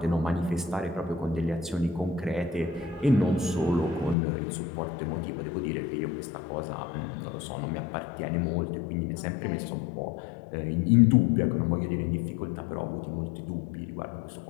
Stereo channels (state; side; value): drops out; right; at 4.2 s